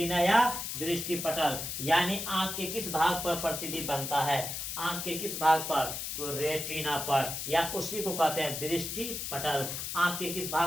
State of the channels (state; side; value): noise; left; hiss, 5 dB below the sound